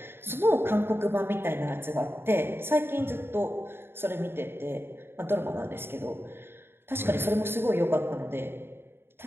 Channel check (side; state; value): left; late; 0.11 ms